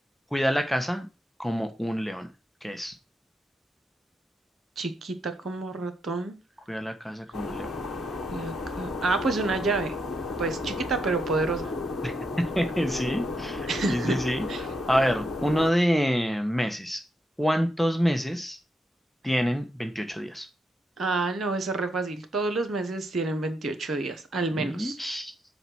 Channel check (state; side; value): normal; both; correlation 0.81